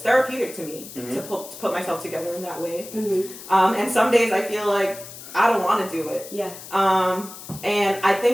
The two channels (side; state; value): left; noise; hiss, 14 dB below the sound